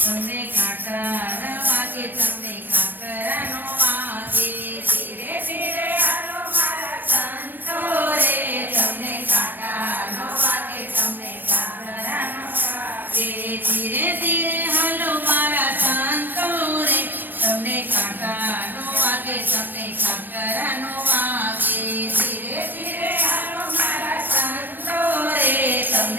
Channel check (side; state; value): left; late; 0.090 ms